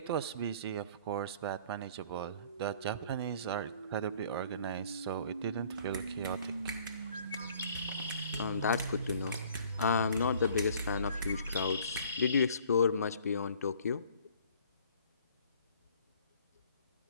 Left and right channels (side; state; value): both; inverted; correlation -0.55